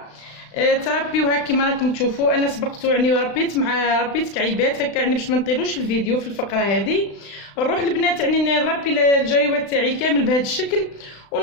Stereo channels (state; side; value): late; right; 36 ms